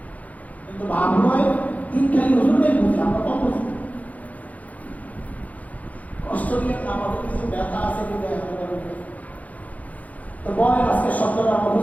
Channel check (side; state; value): right; late; 0.073 ms